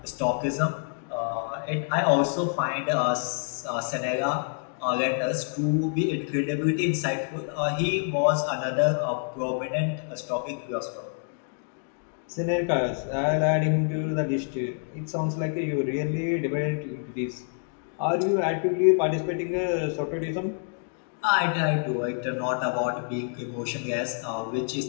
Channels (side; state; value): right; silent; 60 dB below the other